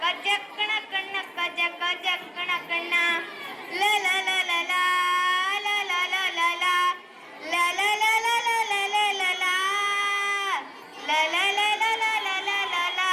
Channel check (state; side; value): identical; both; correlation 1.00